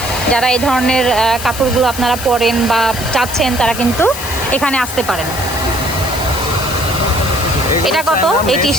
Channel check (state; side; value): noise; left; hiss, 10 dB below the sound